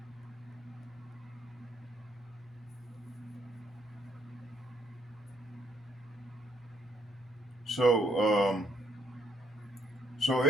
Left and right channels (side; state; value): both; normal; correlation 0.71